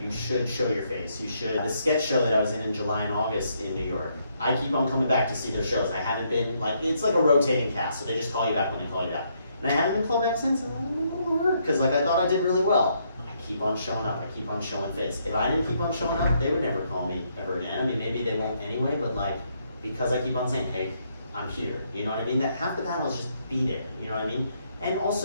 You should show your face. You should. The sketch show that I was in July and August in New York, I keep on coming back to see their shows. I haven't been, like, it's like a rotating cast, so they just call you back when they call you back. And I haven't been called back since, and I'm going to work, because like I thought I did really well. I keep on showing up, I keep on showing face. If I didn't keep on showing up, they would never call me ever again. I mean, maybe they won't anyway, but like, because I keep on saying, hey, I'm here, you know what I mean? That half the battle is just be there, you know what I mean? And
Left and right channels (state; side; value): inverted; both; correlation -0.74